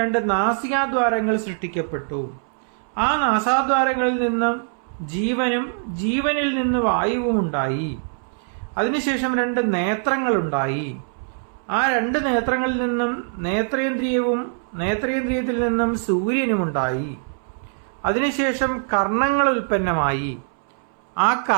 2 നാസികാദ്വാരങ്ങൾ സൃഷ്ടിക്കപ്പെട്ടു. ആ നാസാദ്വാരങ്ങളിൽ നിന്നും ജീവനും ജീവനിൽ നിന്ന് വായുവും ഉണ്ടായി. അതിനുശേഷം 2 നേത്രങ്ങളുണ്ടായി. ആ 2 നേത്രങ്ങളിൽ നിന്നും നേത്രേന്ദ്രിയവും നേത്രേന്ദ്രിയത്തിൽ നിന്നും സൂര്യനുമുണ്ടായി. അതിനുശേഷം കർണങ്ങൾ ഉൽപ്പന്നമായി. ആ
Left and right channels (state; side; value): silent; left; 64 dB below the other